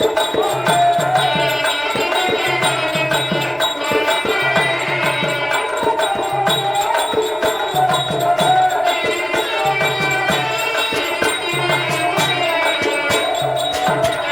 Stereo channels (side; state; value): right; noise; rumble, 30 dB below the sound